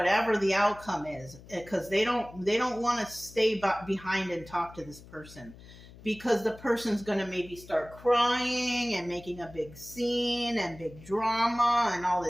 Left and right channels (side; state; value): left; noise; hum, 19 dB below the sound